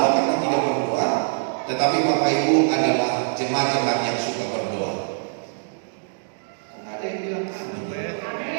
karena tidak berdoa, tetapi Bapak Ibu adalah jemaat-jemaat yang suka berdoa. Kok ada yang bilang amin?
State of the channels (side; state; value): left; silent; digital silence